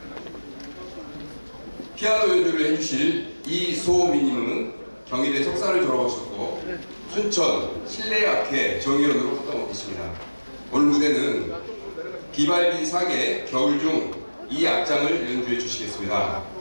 피아노 연주를 해주실 이소미님은 경희대 석사를 졸업하셨고 순천 실내악회 정위원으로 활동하고 계십니다. 오늘 무대는 비발디 사계 겨울 중 이 악장을 연주해 주시겠습니다.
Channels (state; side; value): inverted; both; correlation -1.00